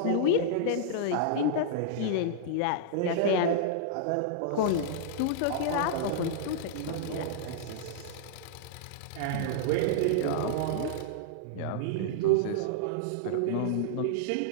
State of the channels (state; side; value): different; both; correlation -0.02